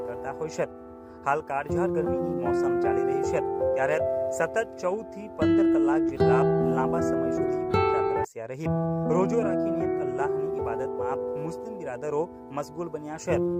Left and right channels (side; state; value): both; identical; correlation 1.00